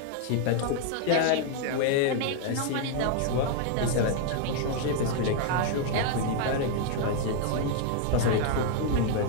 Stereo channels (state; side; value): different; both; correlation 0.00